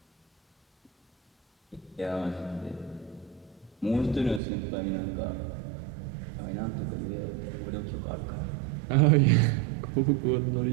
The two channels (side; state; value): left; drops out; at 4.4 s